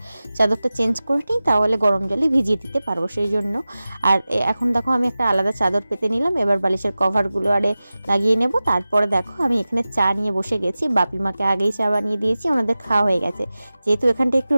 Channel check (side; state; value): both; inverted; correlation -0.96